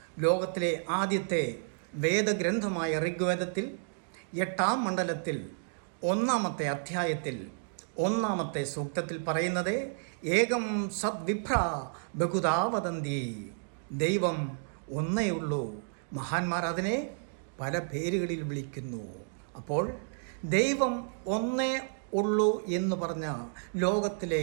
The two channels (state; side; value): silent; left; digital silence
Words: ലോകത്തിലെ ആദ്യത്തെ വേദഗ്രന്ഥമായ ഋഗ്വേദത്തിൽ 8-ാം മണ്ഡലത്തിൽ 1-ാമത്തെ അധ്യായത്തിൽ 1-ാമത്തെ സൂക്തത്തിൽ പറയുന്നത് ഏകം സദ്വിഭ്ര ബഹുധാ വദന്തി. ദൈവം ഒന്നേ ഉള്ളൂ, മഹാന്മാർ അതിനെ പല പേരുകളിൽ വിളിക്കുന്നു. അപ്പോൾ ദൈവം ഒന്നേ ഉള്ളൂ എന്ന് പറഞ്ഞ ലോകത്തിലെ